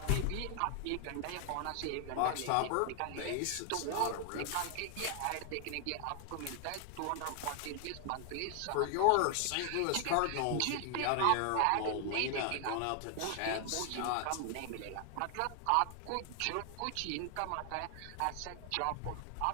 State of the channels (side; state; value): both; different; correlation 0.00